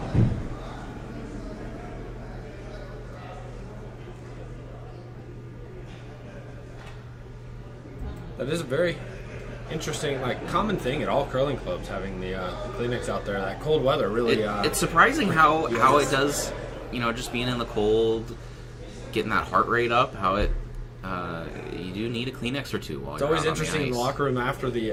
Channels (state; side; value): identical; both; correlation 1.00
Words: That is a very interesting, common thing at all curling clubs having the Kleenex out there. That cold weather really. It's surprising how it does, just being in the cold, getting that heart rate up. How it, you do need a Kleenex or two while It's you're always out on the interesting in the ice. locker room after